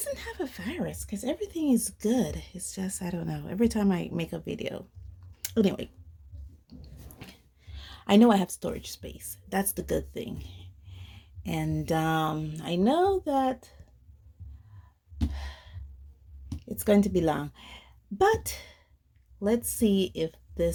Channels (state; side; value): identical; both; correlation 1.00